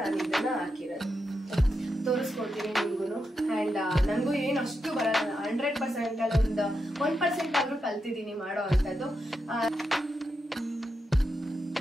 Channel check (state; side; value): normal; both; correlation 0.86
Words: ಇದನ್ನ ಹಾಕಿರೋದು. ತೋರಿಸ್ಕೊಡ್ತೀನಿ ನಿಮ್ಗೂ. ಅಂಡ್ ನನ್ಗೂ ಏನು ಅಷ್ಟು ಬರಲ್ಲ, 100% ಅಲ್ಲಿ ಒಂದು 1% ಆದ್ರೂ ಕಲ್ತಿದ್ದೀನಿ ಮಾಡೋ ಅಂತದ್ದು.